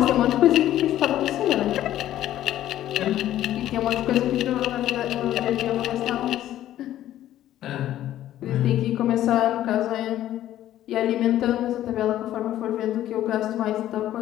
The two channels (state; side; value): quieter; right; 12.8 dB